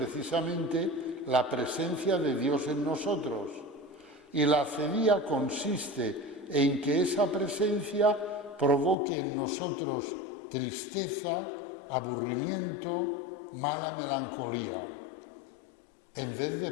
la presencia de Dios en nosotros, y la acedía consiste en que esa presencia provoque en nosotros tristeza, aburrimiento, mala melancolía, en vez de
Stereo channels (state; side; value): drops out; right; at 9.0 s